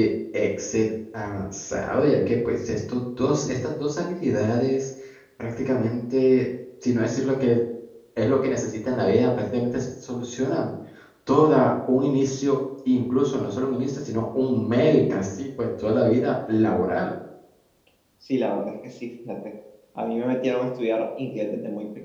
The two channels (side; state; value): both; identical; correlation 1.00